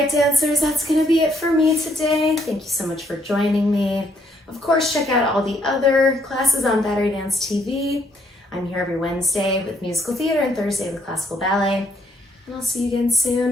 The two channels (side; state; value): both; normal; correlation 0.70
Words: dancers, that's gonna be it for me today. Thank you so much for joining me. Of course, check out all the other classes on Battery Dance TV. I'm here every Wednesday with musical theater and Thursday with classical ballet. And I'll see you again